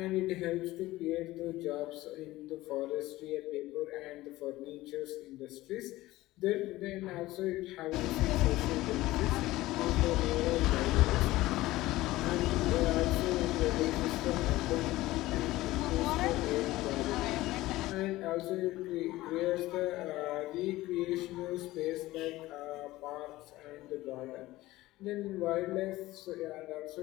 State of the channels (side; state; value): right; quieter; 17.6 dB